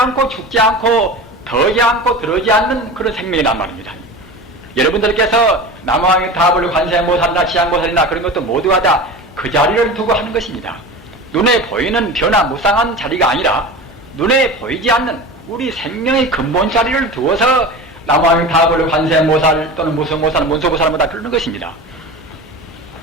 죽지 않고 더지 않고 들어지 않는 그런 생명이란 말입니다. 여러분들께서 남왕의 다불 관세음보살이나 지향보살이나 그런 것도 모두가 다 그 자리를 두고 하는 것입니다. 눈에 보이는 변화무쌍한 자리가 아니라 눈에 보이지 않는 우리 생명의 근본 자리를 두어서 남왕의 다불 관세음보살 또는 무성보살, 문소보살보다 그러는 것입니다.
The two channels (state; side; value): normal; both; correlation 0.31